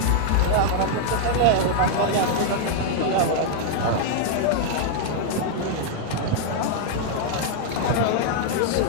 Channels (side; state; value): both; different; correlation -0.01